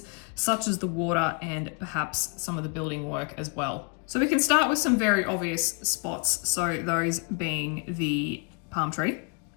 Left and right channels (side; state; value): right; quieter; 36.1 dB